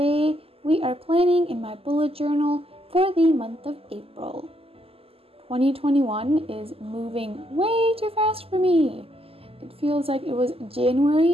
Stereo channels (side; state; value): left; late; 0.28 ms